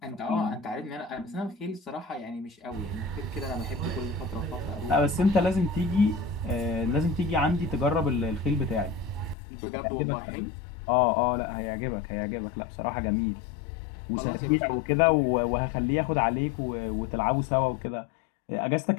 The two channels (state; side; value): drops out; right; at 9.3 s